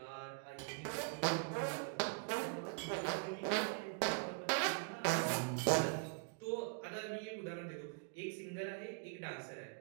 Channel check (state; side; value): quieter; left; 35.2 dB